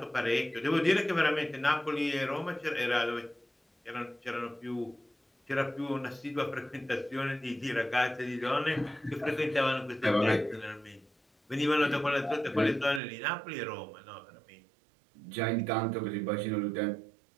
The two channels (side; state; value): left; drops out; at 13.0 s